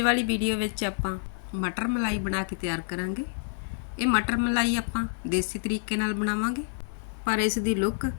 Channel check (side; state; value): right; silent; digital silence